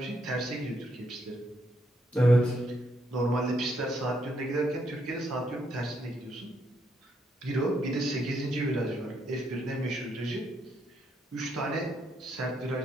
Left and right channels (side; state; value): both; normal; correlation 0.75